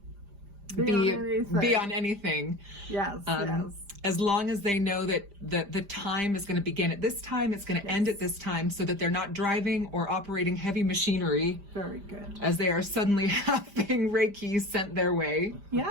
be on anything. Yes. As long as they know that the time is going to begin at this time, it's going to end at this time, so that they're not driving or operating heavy machinery. Very good. As they are suddenly having Reiki sent their way.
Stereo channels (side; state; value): left; late; 5.0 ms